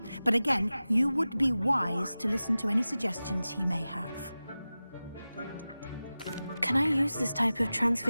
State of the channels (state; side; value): inverted; both; correlation -0.96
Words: but again, you would be wise to listen to any suggestions he may have. Can I use this type of